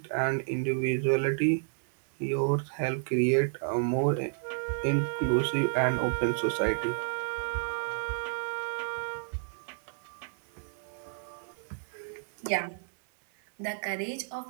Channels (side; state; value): left; silent; 57 dB below the other